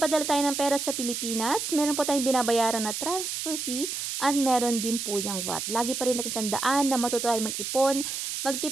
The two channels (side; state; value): right; noise; hiss, 4 dB below the sound